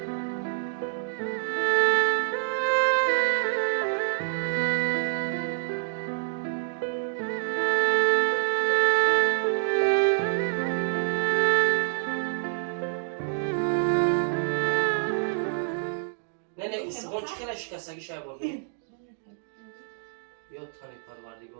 سوغون چی خیلی شکستگی شای بردی؟ یا تانی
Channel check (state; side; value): silent; left; digital silence